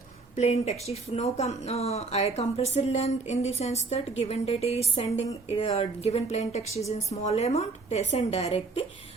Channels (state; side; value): quieter; left; 3.9 dB